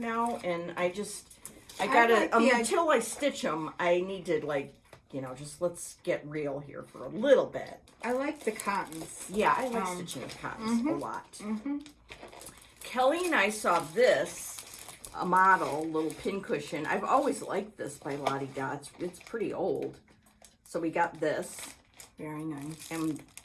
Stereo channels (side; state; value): both; identical; correlation 1.00